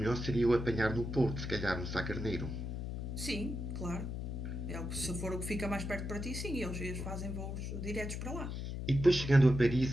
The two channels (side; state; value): left; noise; hum, 4 dB below the sound